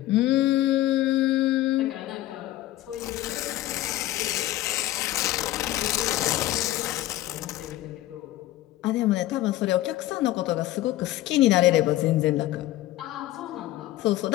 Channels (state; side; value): quieter; right; 15.6 dB